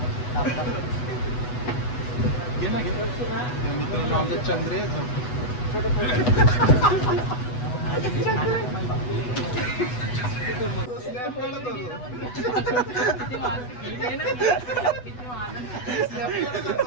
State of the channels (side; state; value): right; late; 8.1 ms